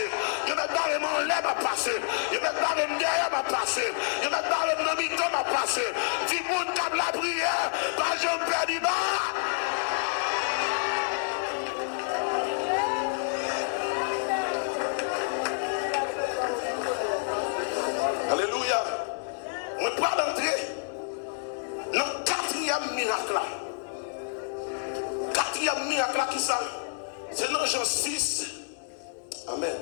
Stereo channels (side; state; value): right; silent; 59 dB below the other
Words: Dieu m'a barré mon lait m'a passé. Dieu m'a barré derrière m'a passé. Dieu m'a barré mon mito m'a passé. Dis moun comme la prière, pas je me perds pas. Jean 6, amen.